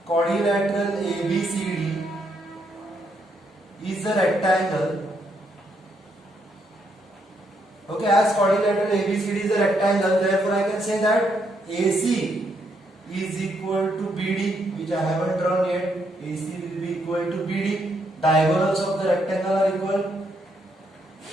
quadrilateral ABCD is a rectangle. Okay, as quadrilateral ABCD is a rectangle, therefore I can say that AC is equal to BD, which I haven't drawn yet. AC will be equal to BD. Diagonals of the rectangle are equal.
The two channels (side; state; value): both; normal; correlation 0.75